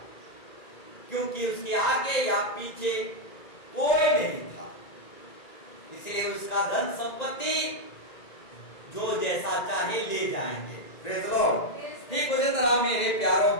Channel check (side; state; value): right; late; 1.9 ms